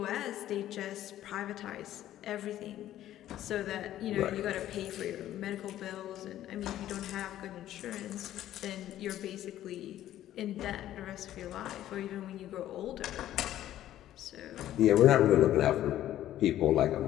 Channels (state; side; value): quieter; right; 12.8 dB